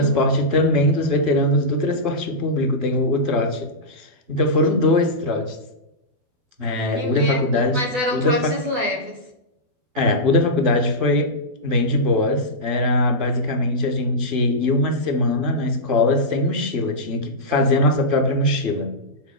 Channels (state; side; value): late; left; 12 ms